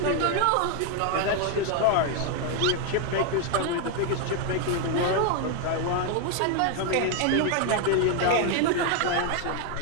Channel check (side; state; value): both; different; correlation 0.00